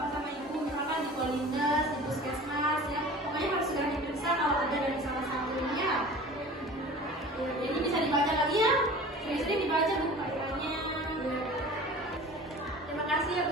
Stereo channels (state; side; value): normal; both; correlation 0.41